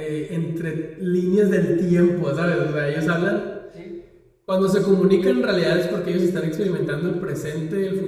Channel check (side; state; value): both; identical; correlation 1.00